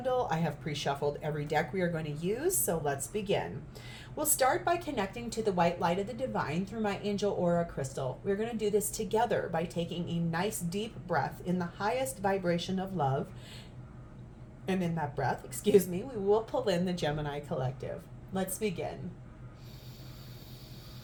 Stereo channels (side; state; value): both; identical; correlation 1.00